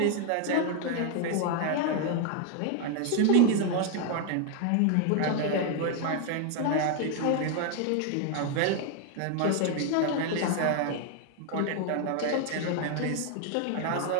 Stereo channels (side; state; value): both; different; correlation 0.01